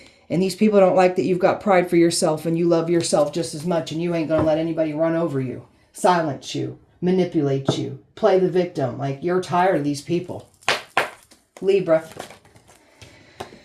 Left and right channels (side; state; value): both; identical; correlation 1.00